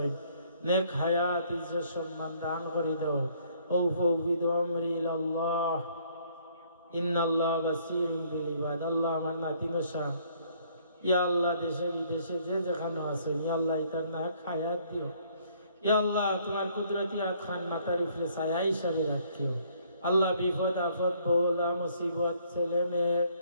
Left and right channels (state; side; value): inverted; both; correlation -0.63